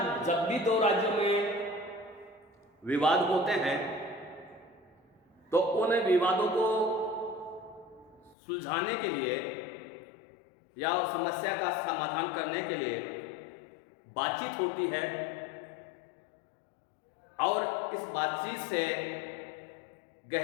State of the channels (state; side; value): drops out; right; at 8.3 s